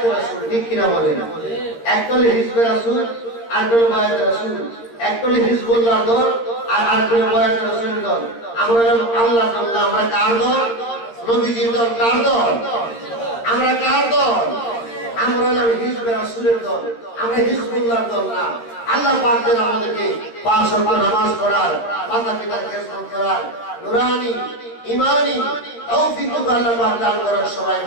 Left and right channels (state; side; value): late; right; 13 ms